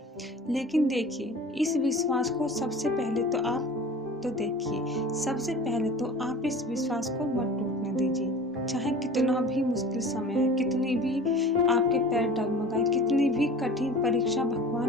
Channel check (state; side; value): normal; both; correlation 0.40